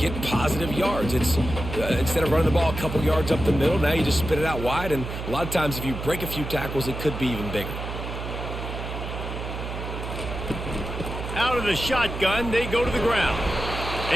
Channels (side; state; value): right; noise; hum, 6 dB below the sound